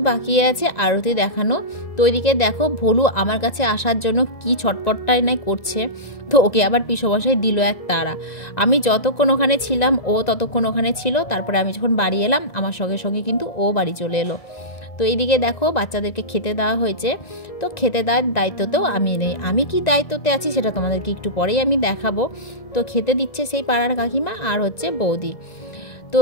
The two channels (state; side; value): late; right; 1.9 ms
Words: বাকি আছে আরতি দেখানো। তো ওইদিকে দেখো ভোলু আমার কাছে আসার জন্য কি ছটপটটাই নাই করছে। তো ওকে আবার পিসোমশাই দিল এক তাড়া। আমি যতক্ষণ ওখানে ছিলাম ও ততক্ষণ ওখানে ছিল, তারপরে আমি যখন বাড়ি এলাম আমার সঙ্গে সঙ্গে কিন্তু ও বাড়ি চলে এলো। তো এইদিকে দেখো বাচ্চাদেরকে খেতে দেওয়া হয়েছে। তো খেতে দেওয়ার দায়িত্বতেও আমি নেই, আমি কি দায়িত্বতে আছি সেটা তোমাদেরকে একটু পরেই আমি দেখাবো। তো খেতে দিচ্ছে সেই পাড়ার কাকিমা আর হচ্ছে বৌদি। তো